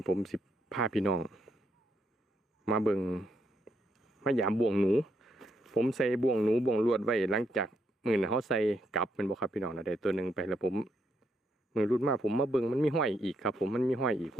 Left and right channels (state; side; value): normal; both; correlation 0.77